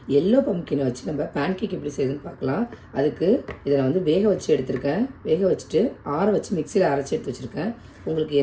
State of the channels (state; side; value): identical; both; correlation 1.00